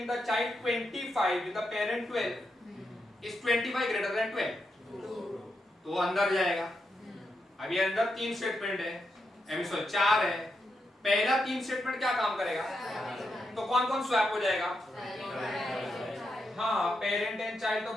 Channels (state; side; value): normal; both; correlation 0.84